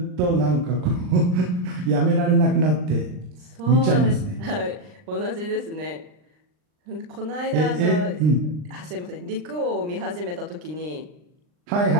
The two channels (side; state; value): left; late; 39 ms